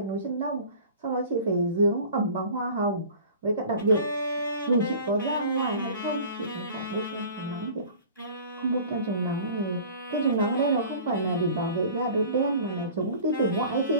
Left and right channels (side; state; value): both; inverted; correlation -0.43